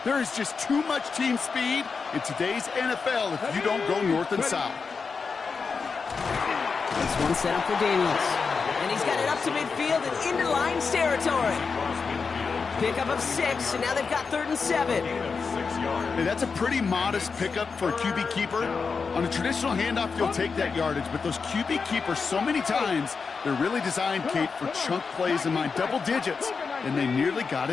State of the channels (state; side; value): quieter; right; 5.1 dB